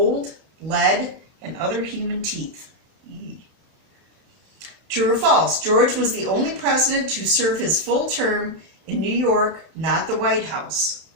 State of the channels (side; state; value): left; late; 31 ms